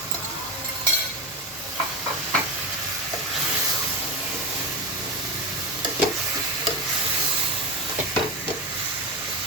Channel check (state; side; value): normal; both; correlation 0.19